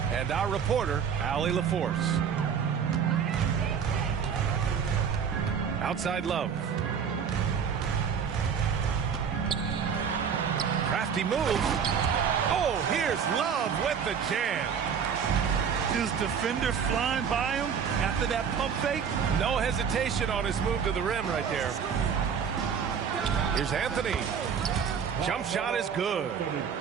and our reporter, Allie LaForce. Outside Love. Crafty move. Oh, here's Love with the jam. His defender flying by him after that pump fake. No hesitation on his move to the rim right there. Here's Anthony. Jump shot is good.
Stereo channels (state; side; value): quieter; left; 7.1 dB